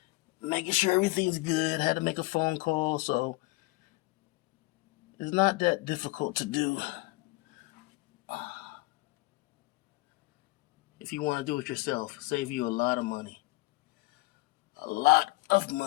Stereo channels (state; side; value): quieter; right; 21.7 dB